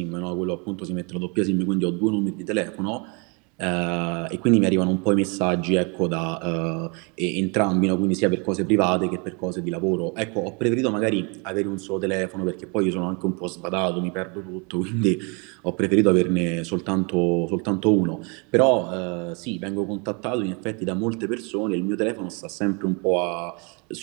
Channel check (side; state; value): left; quieter; 32.6 dB